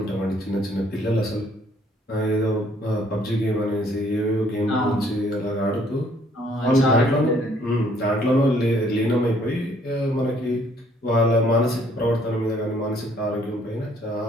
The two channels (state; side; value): normal; both; correlation 0.63